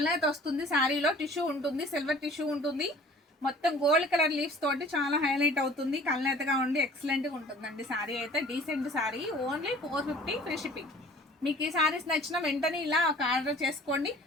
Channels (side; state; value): both; normal; correlation 0.48